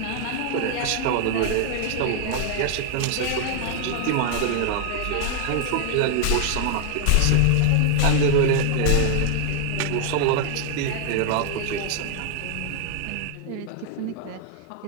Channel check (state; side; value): different; both; correlation 0.00